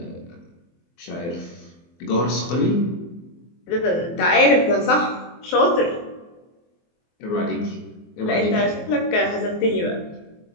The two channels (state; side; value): late; right; 24 ms